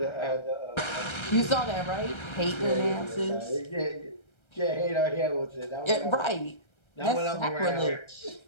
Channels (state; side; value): late; right; 1.3 ms